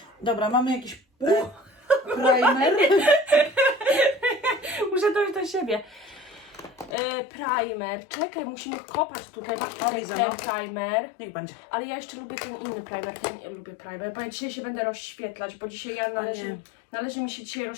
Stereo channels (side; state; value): right; drops out; at 7.0 s